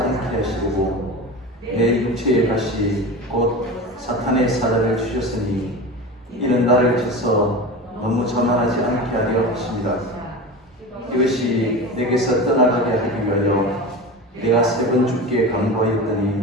하시고 내 육체의 가시 곧 사탄의 사자를 주셨으니 이는 나를 쳐서 너무 자만하지 않게 하려 하십니다. 이것이 내게서 떠나가게 하기 위하여 내가 3번 주께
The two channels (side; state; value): both; normal; correlation 0.29